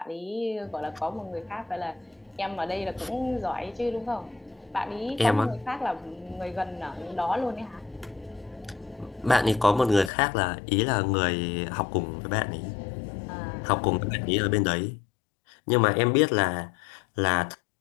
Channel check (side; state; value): right; drops out; at 10.1 s